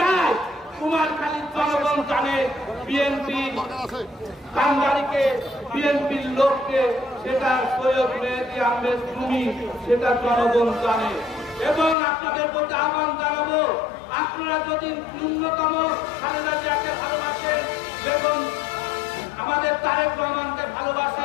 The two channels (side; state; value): right; drops out; at 12.0 s